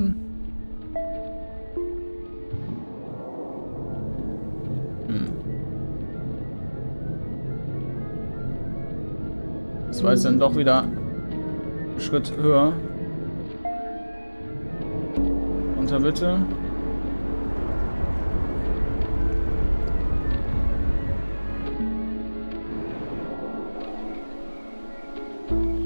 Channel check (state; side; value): inverted; both; correlation -1.00